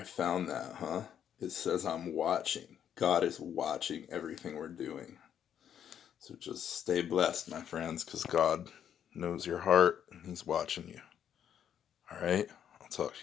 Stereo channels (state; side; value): quieter; right; 9.3 dB